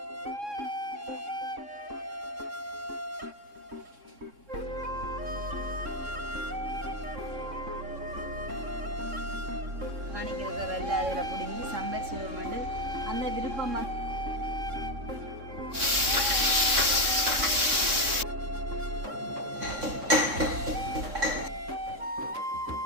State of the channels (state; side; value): late; left; 3.6 ms